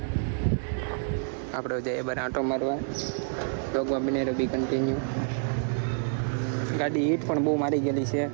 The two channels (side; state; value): left; silent; digital silence